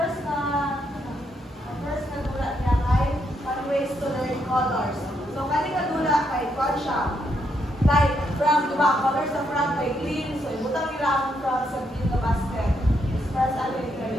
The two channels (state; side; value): normal; both; correlation 0.77